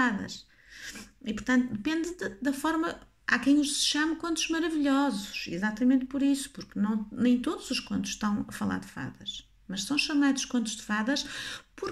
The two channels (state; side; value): identical; both; correlation 1.00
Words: E portanto depende da forma. Há quem os chame contos maravilhosos, exatamente por isso, porque nem todos os contos estão a falar de fadas. mas são chamados contos de fadas